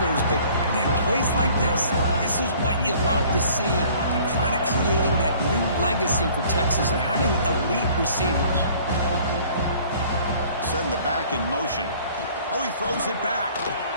but, man, plays like this is what you love to see, and kind of creating that new legacy for Texas and having elite receivers. send the back in motion. Oh, he throws it back.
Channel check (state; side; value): inverted; both; correlation -0.53